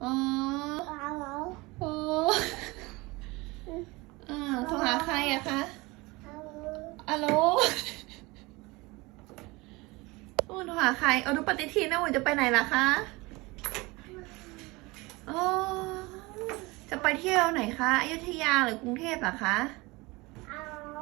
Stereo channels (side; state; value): left; quieter; 23.4 dB